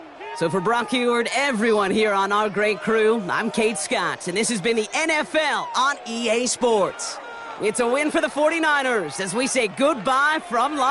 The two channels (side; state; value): both; identical; correlation 1.00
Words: So for Brock Huard, everyone here on our great crew, I'm Kate Scott, and this has been the NFL on EA Sports. It's a win for the 49ers as we say goodbye from